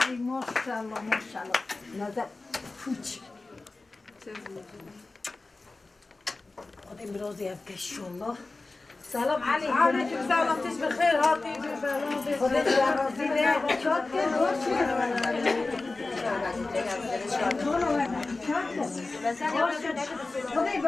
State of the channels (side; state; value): right; quieter; 3.4 dB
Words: ماشاءالله ماشاءالله نظر پوچ خدای برازی افکشالله سلام علیکم علیکم سلام تش بخیر هاتی خدای برازی نه چات کرد خدای